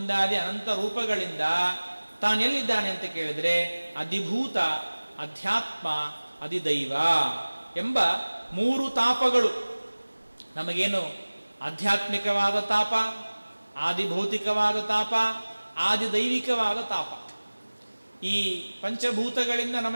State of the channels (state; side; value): inverted; both; correlation -1.00